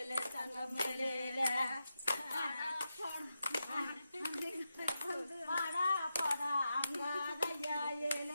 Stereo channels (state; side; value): inverted; both; correlation -0.88